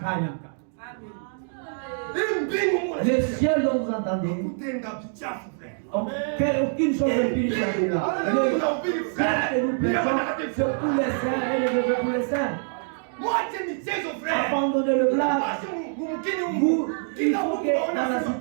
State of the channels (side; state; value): left; silent; 61 dB below the other